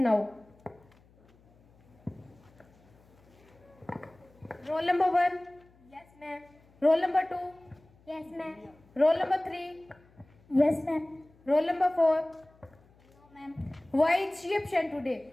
Roll number 1. Yes, ma'am. Roll number 2. Yes, ma'am. Roll number 3. Yes, ma'am. Roll number 4. No, ma'am. Why is she absent today?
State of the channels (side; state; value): left; noise; hum, 29 dB below the sound